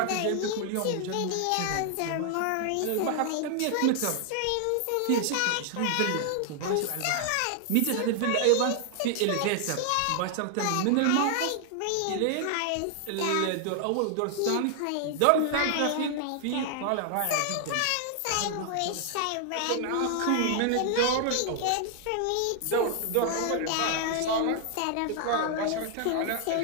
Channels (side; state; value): both; different; correlation 0.00